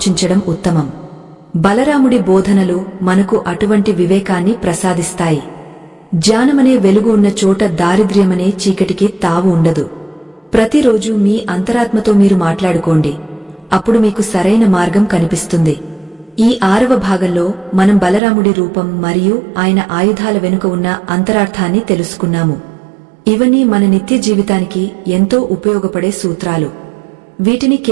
ఉత్తమం. బలరాముడి బోధనలు మనకు అటువంటి వివేకాన్ని ప్రసాదిస్తాయి. జ్ఞానమనే వెలుగు ఉన్న చోట దారిద్ర్యమనే చీకటికి తావు ఉండదు. ప్రతిరోజు మీ అంతరాత్మతో మీరు మాట్లాడుకోండి. అప్పుడు మీకు సరైన మార్గం కనిపిస్తుంది. ఈ 6వ భాగంలో మనం బలరాముడి రూపం మరియు ఆయన ఆయుధాల వెనుక ఉన్న అంతరార్థాన్ని తెలుసుకున్నాము. ఇవన్నీ మన నిత్య జీవితానికి ఎంతో ఉపయోగపడే సూత్రాలు. వీటిని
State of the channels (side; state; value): left; drops out; at 18.2 s